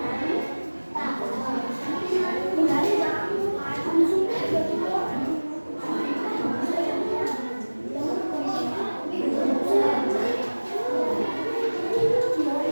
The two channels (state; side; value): inverted; both; correlation -1.00